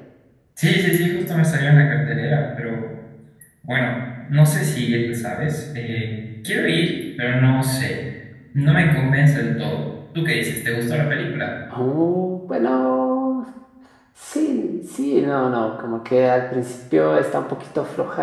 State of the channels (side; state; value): both; identical; correlation 1.00